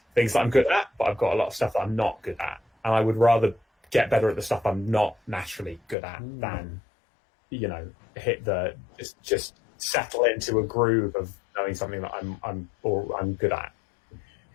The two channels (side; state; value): right; drops out; at 6.0 s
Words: things that I'm good at, but I've got a lot of stuff that I'm not good at, and I would rather get better at the stuff I'm not naturally good at than, hit the just settle into a groove of knowing something that I'm good at.